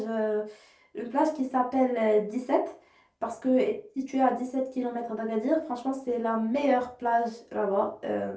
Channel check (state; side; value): identical; both; correlation 1.00